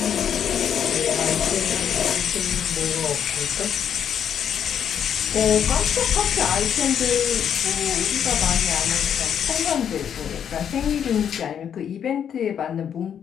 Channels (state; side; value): quieter; right; 8.6 dB